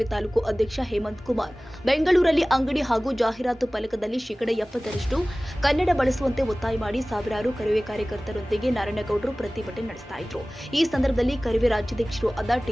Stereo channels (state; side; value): normal; both; correlation 0.98